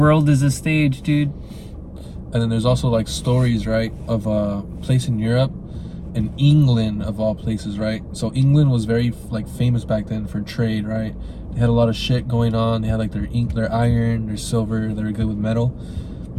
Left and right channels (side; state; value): both; identical; correlation 1.00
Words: is a stage, dude. And then there's also like stories, right, of a place in Europe, in England of all places, right? So England was very like famous back then for trade, right? They had a lot of shit going on. They had like their iron, their silver. They were good with metal.